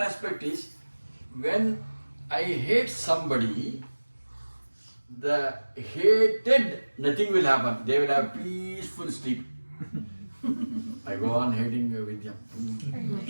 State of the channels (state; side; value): inverted; both; correlation -1.00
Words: aspect is, when I hate somebody, the hated, nothing will happen. They will have peaceful sleep. I go on hating Vidya.